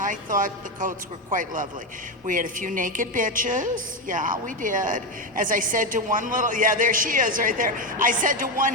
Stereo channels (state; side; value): normal; both; correlation 0.11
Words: thought the coats were quite lovely. We had a few naked bitches. Yeah, we did. As I said to one there she is right there. I said to one